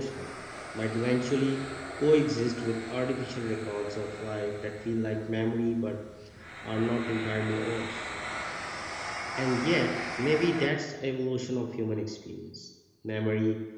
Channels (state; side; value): identical; both; correlation 1.00